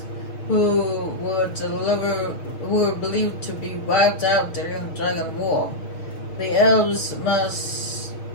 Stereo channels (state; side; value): late; right; 6.2 ms